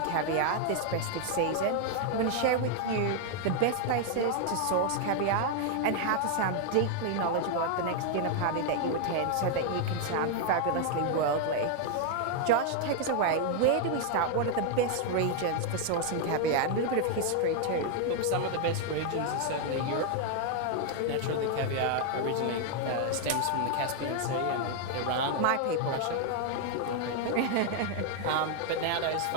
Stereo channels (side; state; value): both; different; correlation 0.00